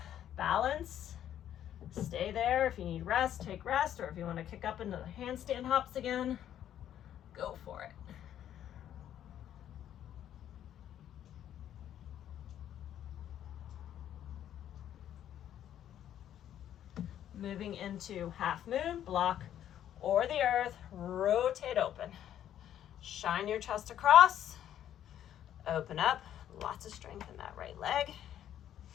balance. Stay there. If you need rest, take rest, or if you want to kick up into the handstand hops again, go for it. Moving into half moon, block or the earth, rotate open. Shine your chest across, open up, lots of strength in that right leg.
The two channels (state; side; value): quieter; right; 10.8 dB